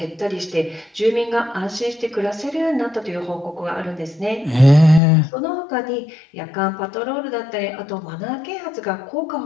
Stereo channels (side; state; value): right; drops out; at 5.0 s